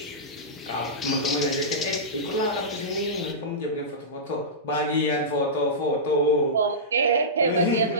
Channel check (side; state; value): both; normal; correlation -0.16